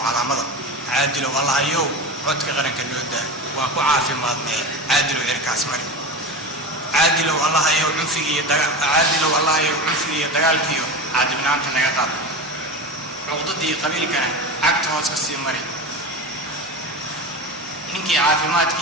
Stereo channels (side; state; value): both; normal; correlation 0.27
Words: calaamada caadilow allahayow codka qaranka nooda waan ku caafimaadnay caadilow cirkaas mari caadilow allahayow cunfigiiyo dagaalkiiyo caadibnaanta naga qaad cuqdadii qabiilkana cagta hoos ka sii mari ninkii